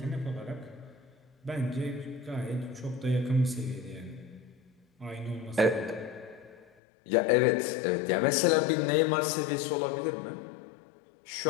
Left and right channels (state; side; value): drops out; right; at 6.7 s